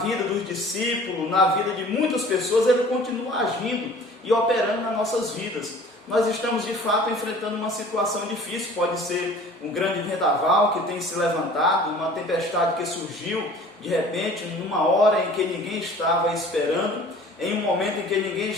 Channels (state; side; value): normal; both; correlation 0.47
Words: dos discípulos, na vida de muitas pessoas, Ele continua agindo e operando nas nossas vidas. Nós estamos de fato enfrentando uma situação difícil, pode ser um grande vendaval que tem se levantado, uma tempestade que surgiu de repente, numa hora em que ninguém estava esperando, em um momento em que ninguém